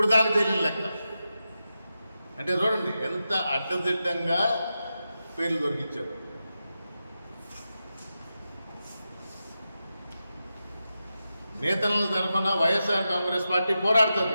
దాకా తెలియని లెక్క. అంటే చూడండి ఎంత అడ్డదిడ్డంగా పేర్లు దొరికించారు. నేతల తరఫున వైఎస్ఆర్ కాంగ్రెస్ పార్టీ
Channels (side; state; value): both; inverted; correlation -0.90